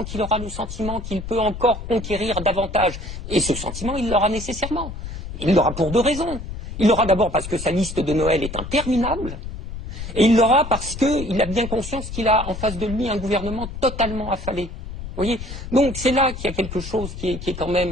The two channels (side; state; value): left; noise; rumble, 9 dB below the sound